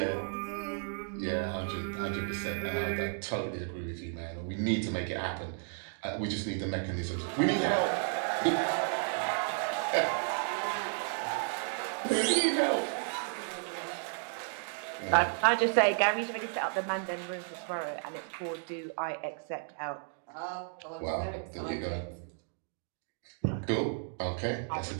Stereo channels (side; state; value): left; silent; 56 dB below the other